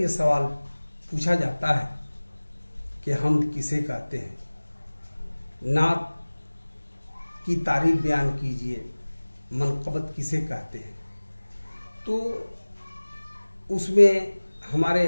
सवाल पूछा जाता है कि हम्द किसे कहते हैं, नात की तारीफ बयान कीजिए, मनक़बत किसे कहते हैं। तो उसमें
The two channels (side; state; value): both; inverted; correlation -1.00